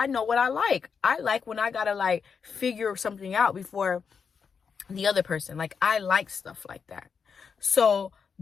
know what I like. I like when I gotta like figure something out before the other person. Like, I like stuff like that. So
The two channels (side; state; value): right; quieter; 6.1 dB